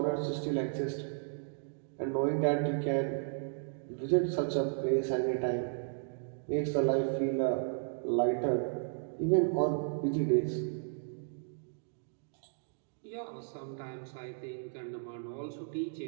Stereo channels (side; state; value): left; silent; digital silence